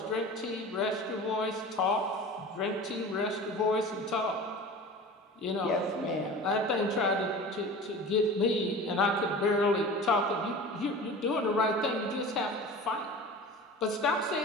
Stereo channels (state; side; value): normal; both; correlation 0.36